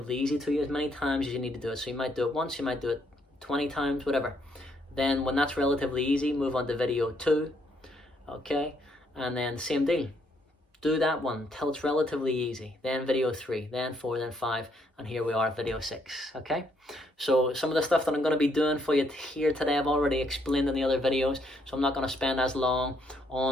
easy to you, as many times as you need to do it. So you might do it once, you might do it 20 times, whatever. Then when that's relatively easy, move on to video 2, okay? And then same deal. Do that one till it's relatively easy. Then video 3, then 4, then 5, and here we are at video 6, okay? So some of the stuff that I'm going to be doing for you here today, I've already explained in the other videos, so I'm not going to spend as long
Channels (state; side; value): normal; both; correlation 0.72